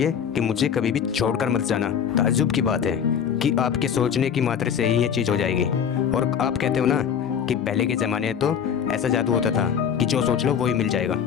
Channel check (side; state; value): right; quieter; 7.9 dB